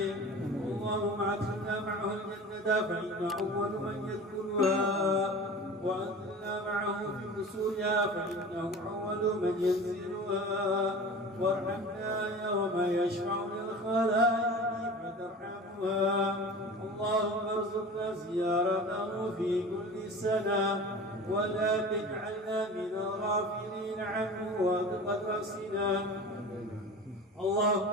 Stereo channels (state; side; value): normal; both; correlation 0.36